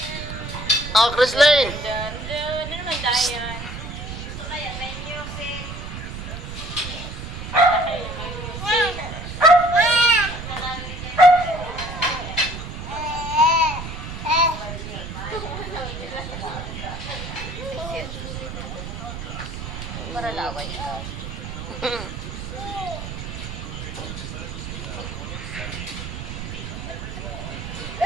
Oh, Chrislane. Ano naman Dayan? Para laway ikaw.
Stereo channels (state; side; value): noise; right; rumble, 8 dB below the sound